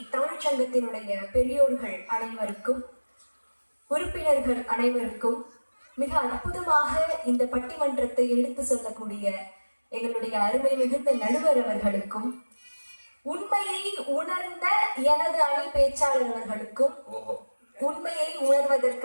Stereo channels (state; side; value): inverted; both; correlation -1.00